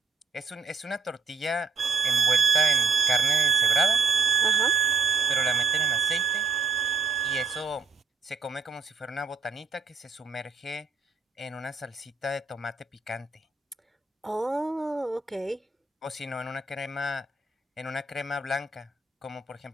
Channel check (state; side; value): quieter; left; 4.7 dB